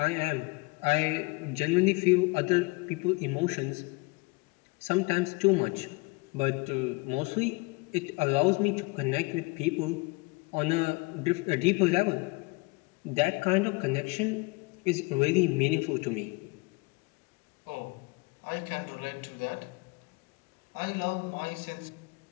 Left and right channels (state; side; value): quieter; right; 26.6 dB